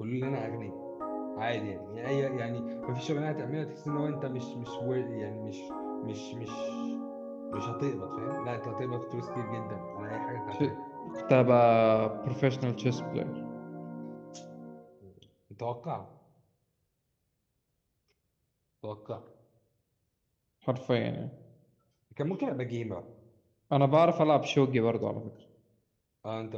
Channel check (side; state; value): both; identical; correlation 1.00